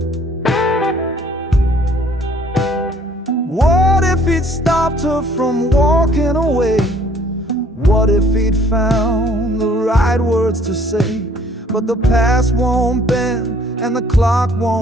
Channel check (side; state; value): both; normal; correlation 0.58